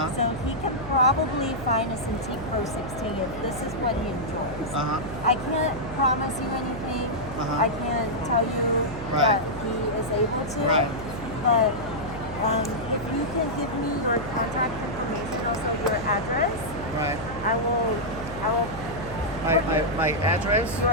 so he can probably find a Cintiq Pro 16 if this is what he enjoys. Uh-huh. I can't promise you anything. Uh-huh. I can't tell you Right. that he is able to. Right. But if you can give me your contact information, also your address, Right. I will My address?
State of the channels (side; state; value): right; noise; hum, 11 dB below the sound